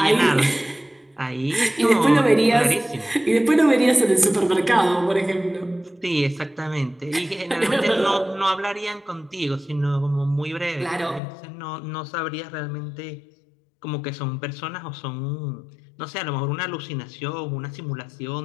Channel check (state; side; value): drops out; right; at 11.2 s